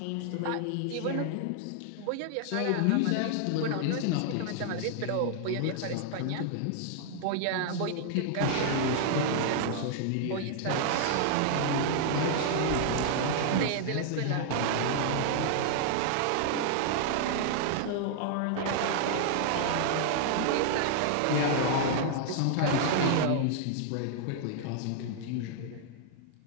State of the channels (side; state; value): both; different; correlation 0.00